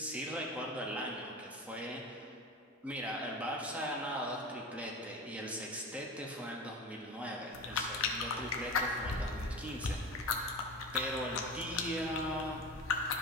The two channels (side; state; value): both; normal; correlation 0.30